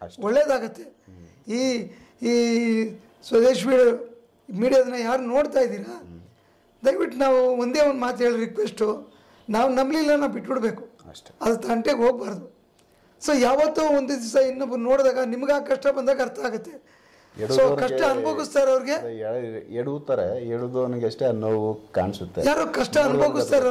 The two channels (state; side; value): identical; both; correlation 1.00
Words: ಒಳ್ಳೇದಾಗತ್ತೆ. ಈ ಸ್ವದೇಶ್ ಮೀಡಿಯಾದನ್ನ ಯಾರು ನೋಡ್ತಾ ಇದ್ದೀರಾ, ದಯವಿಟ್ಟು ನಾವು ಒಂದೇ ಒಂದು ಮಾತು ಹೇಳಿ ರಿಕ್ವೆಸ್ಟು, ನಾವು ನಂಬಲಿಲ್ಲ, ನಾವು ಬಿಟ್ಬಿಡ್ಬೇಕು, ಅದು ತಂಟೆಗೆ ಹೋಗ್ಬಾರ್ದು. ಸೊ ಯಾವತ್ತೋ ಒಂದು ದಿವಸ ಇನ್ನೊಬ್ರು ನೋಡಿದಾಗ ನಿಮ್ಗೆ ಆ ಕಷ್ಟ ಬಂದಾಗ ಅರ್ಥ ಆಗುತ್ತೆ. ಸೊ ಕಷ್ಟ ಅನುಭವಿಸ್ತಾರೆ ಅವ್ರಿಗೆ, ಎಡುದವನಿಗೆ ಅಷ್ಟೇ ನೋವು ಕಾಣಿಸುತ್ತೆ. ಯಾರೋ ಕಷ್ಟ ಅನುಭವಿಸ್ತಾರೆ